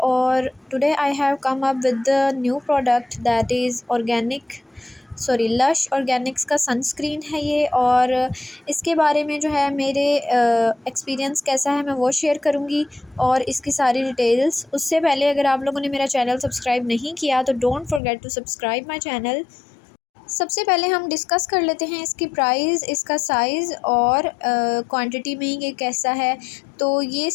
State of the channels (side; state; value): right; drops out; at 18.0 s